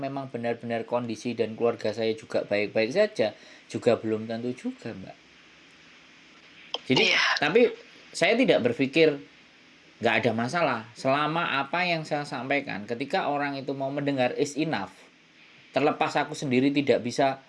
benar-benar kondisi dan keluarga saya juga baik-baik saja, juga belum tentu juga Mbak. Jadi tapi saya tidak berpikir nggak ada masalah selama apa yang saya sampaikan ketika orang itu mau mendengar is enough. Terlepas aku sendiri tidak bisa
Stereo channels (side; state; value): both; identical; correlation 1.00